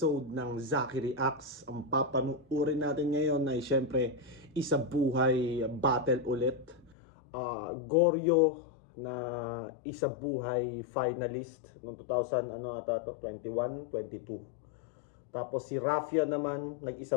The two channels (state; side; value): drops out; right; at 7.0 s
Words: ng Zaki Reacts. Ang papanuorin natin ngayon ay syempre isa buhay battle ulit. Goryo na isa buhay finalist noong 2021, 22. Tapos si Rafia naman, nag-isa